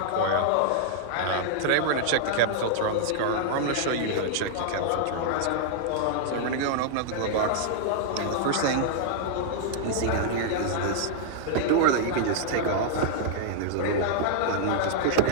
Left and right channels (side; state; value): both; different; correlation -0.01